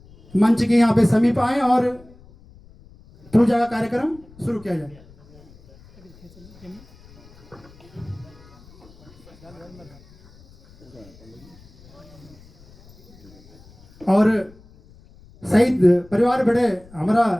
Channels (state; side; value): noise; left; rumble, 25 dB below the sound